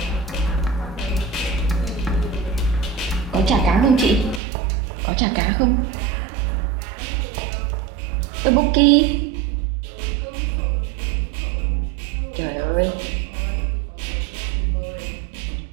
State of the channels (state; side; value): drops out; left; at 4.4 s